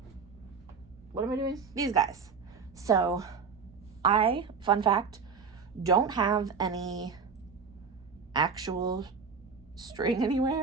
what am I doing? These guys. So I, fun fact, don't have any actual string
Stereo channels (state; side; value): quieter; left; 5.6 dB